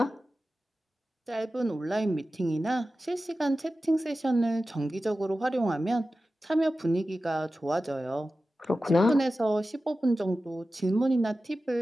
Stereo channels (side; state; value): both; normal; correlation 0.94